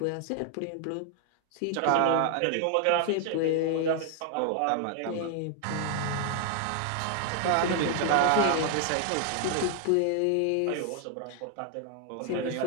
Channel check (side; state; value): both; different; correlation 0.00